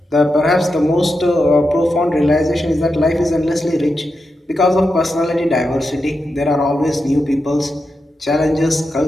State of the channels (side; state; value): both; normal; correlation 0.88